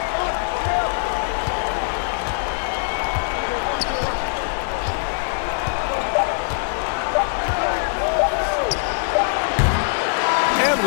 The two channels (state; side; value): silent; right; 64 dB below the other